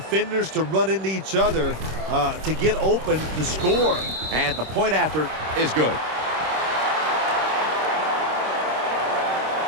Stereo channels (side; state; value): left; late; 26 ms